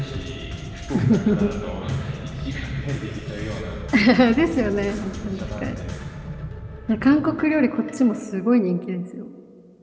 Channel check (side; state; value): both; identical; correlation 1.00